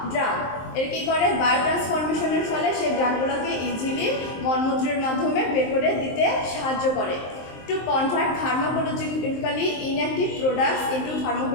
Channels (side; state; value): right; late; 23 ms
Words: drug, এর কী করে বায়োট্রান্সফরমেশনের ফলে সেই ড্রাগগুলোকে ইজিলি মলমূত্রের মাধ্যমে বের করে দিতে সাহায্য করে। To convert pharmacologically inactive products into